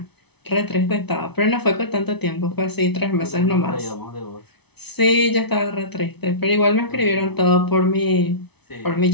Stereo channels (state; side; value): late; right; 0.99 ms